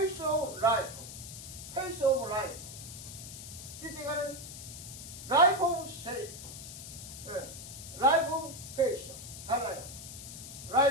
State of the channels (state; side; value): noise; left; hiss, 11 dB below the sound